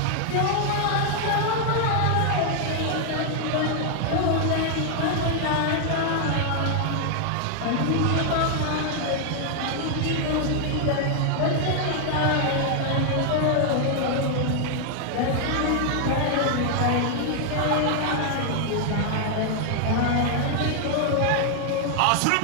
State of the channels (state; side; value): different; both; correlation 0.00